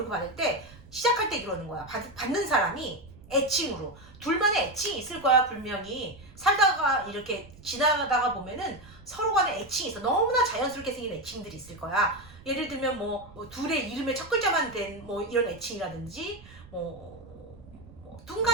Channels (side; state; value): right; noise; rumble, 21 dB below the sound